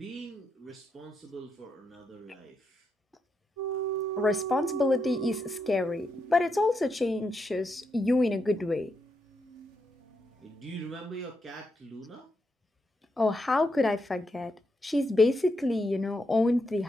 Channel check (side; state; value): both; normal; correlation 0.82